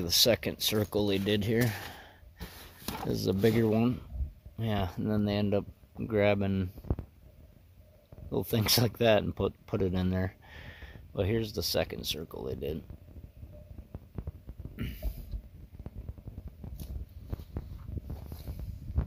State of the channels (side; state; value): both; identical; correlation 1.00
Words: the second circle they did here. This is a bigger one. Yeah, and then they end up grabbing little things like that and put it in there. Well, here's the second circle they did.